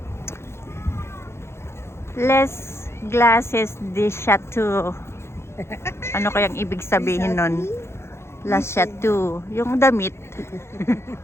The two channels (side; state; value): right; late; 0.13 ms